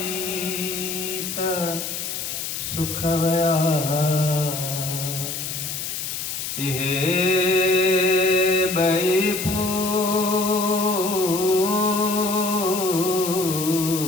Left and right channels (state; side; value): noise; left; hiss, 5 dB below the sound